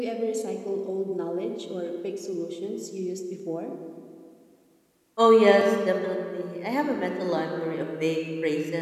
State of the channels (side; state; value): both; identical; correlation 1.00